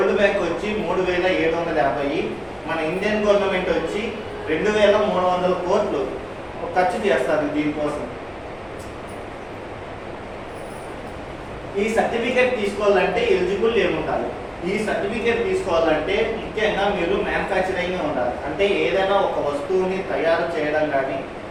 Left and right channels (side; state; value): both; identical; correlation 1.00